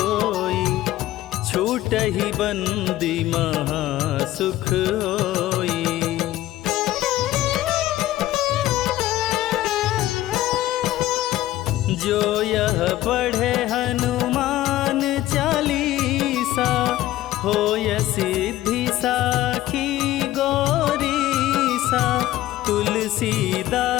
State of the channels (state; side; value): quieter; right; 15.0 dB